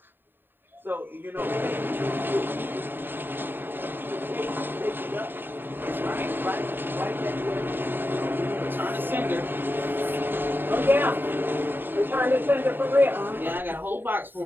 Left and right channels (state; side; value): late; left; 0.095 ms